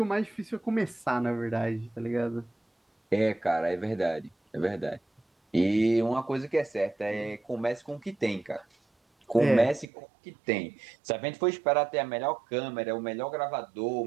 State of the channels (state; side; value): drops out; left; at 9.9 s